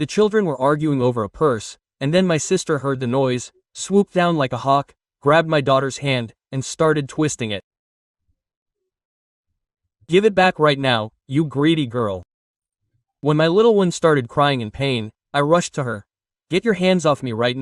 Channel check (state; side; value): identical; both; correlation 1.00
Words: children were arguing over a purse, and then my sister heard the noise, swooped down like a hawk, grabbed my daughter's hand, and started twisting it. "Give it back right now, you greedy girl." When my little one started crying in pain, I rushed to her. "Get your hands off me right